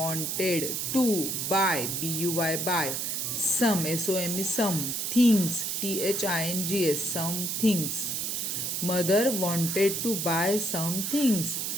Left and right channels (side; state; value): right; noise; hiss, 1 dB below the sound